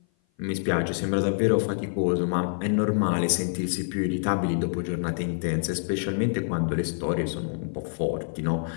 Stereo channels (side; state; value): right; silent; 56 dB below the other